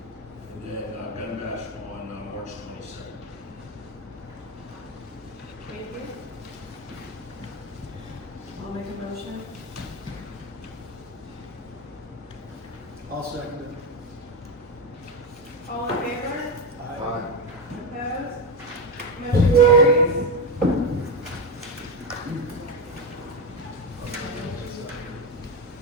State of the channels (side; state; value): both; normal; correlation 0.13